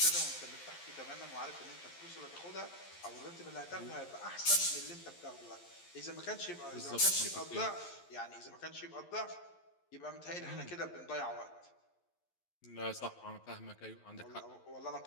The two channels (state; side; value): late; right; 11 ms